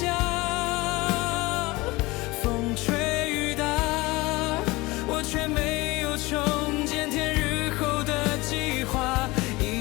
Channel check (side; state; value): right; quieter; 22.0 dB